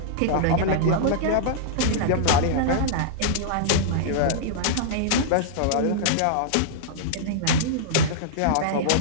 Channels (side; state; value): both; different; correlation -0.02